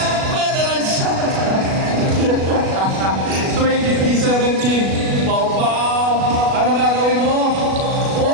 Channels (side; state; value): left; late; 37 ms